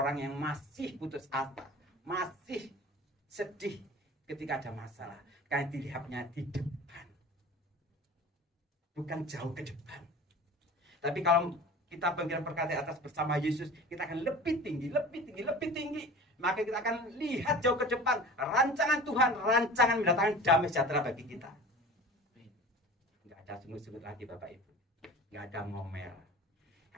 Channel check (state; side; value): normal; both; correlation 0.38